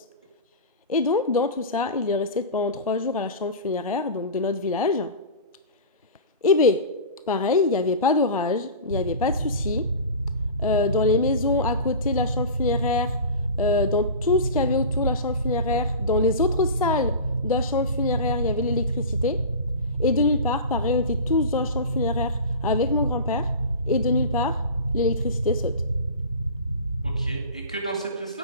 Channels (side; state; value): both; inverted; correlation -0.32